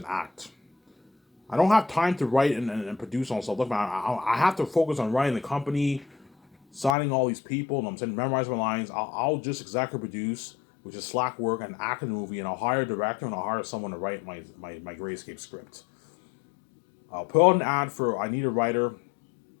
act. I don't have time to write and produce on stuff. Look, man, I have to focus on writing the company, signing all these people, and I'm saying memorize my lines. I'll just exactly produce, which is slack work, and act in the movie, and I'll hire a director and I'll hire someone to write my Great Escape script. I'll put out an ad for I need a writer.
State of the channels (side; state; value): right; drops out; at 7.0 s